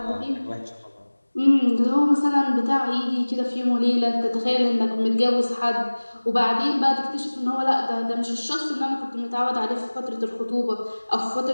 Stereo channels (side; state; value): both; inverted; correlation -1.00